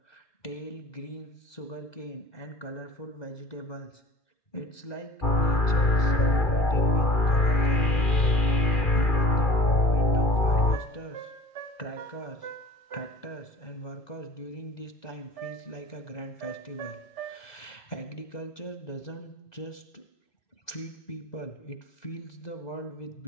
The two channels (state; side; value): late; right; 2.4 ms